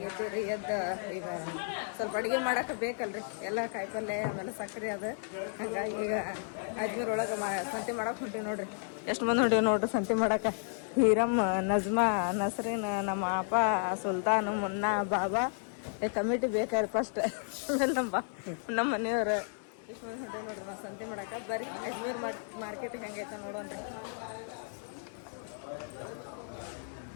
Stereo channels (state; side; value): silent; right; digital silence